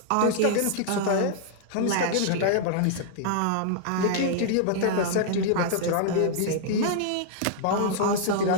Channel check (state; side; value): different; both; correlation -0.01